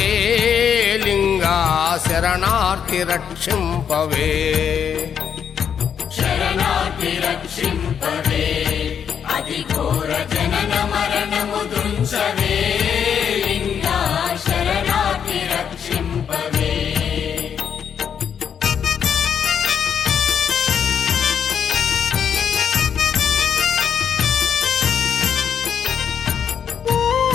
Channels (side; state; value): right; quieter; 7.9 dB